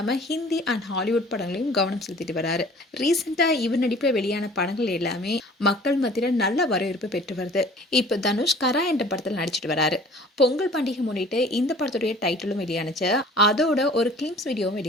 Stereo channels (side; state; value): both; normal; correlation 0.49